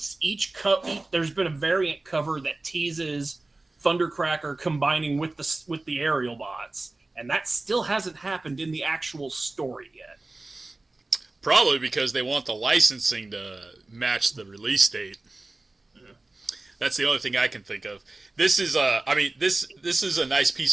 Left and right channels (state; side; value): quieter; left; 3.1 dB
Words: there's been a variant cover that teases Thundercracker combining with the aerial bots, and that still hasn't happened in the actual story yet. Probably because they want the licensing to match the release date. That's the only thing I can think of. This is this is a nice